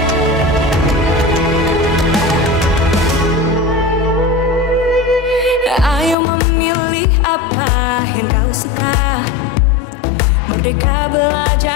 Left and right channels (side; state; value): right; drops out; at 6.2 s